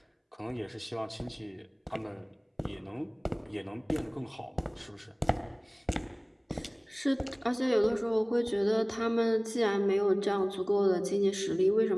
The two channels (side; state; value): both; identical; correlation 1.00